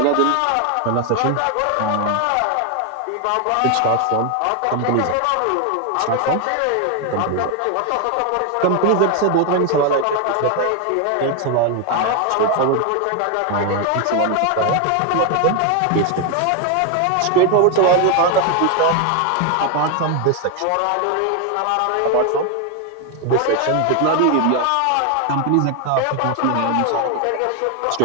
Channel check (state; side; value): different; both; correlation 0.01